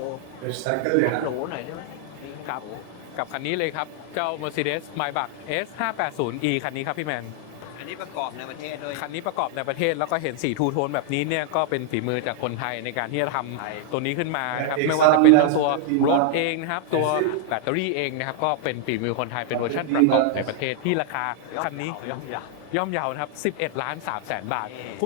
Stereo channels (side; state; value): both; different; correlation 0.00